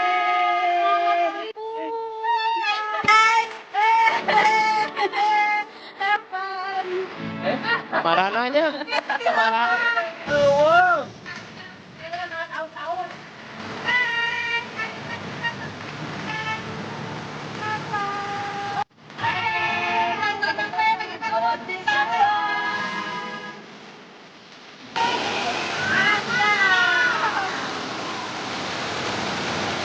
Marah nanya. Marah.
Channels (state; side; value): identical; both; correlation 1.00